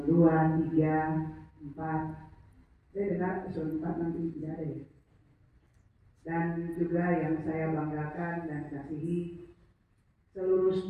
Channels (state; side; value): identical; both; correlation 1.00